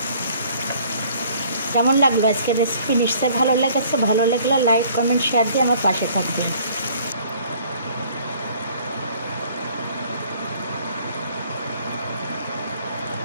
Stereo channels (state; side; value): inverted; both; correlation -0.57